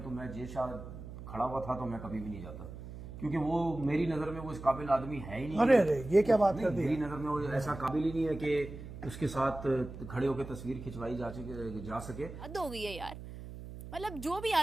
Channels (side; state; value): right; noise; hum, 12 dB below the sound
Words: तो मैं जय शाह खड़ा हुआ था तो मैं कभी भी नहीं जाता, क्योंकि वो मेरी नजर में वो इस काबिल आदमी है ही नहीं। अरे ये क्या बात कर दी? मेरी नजर में वो ऐसा काबिल ही नहीं है कि उसके साथ खड़े होकर तस्वीर खिंचवाई जा सके। हद हो गई है यार। मतलब जो भी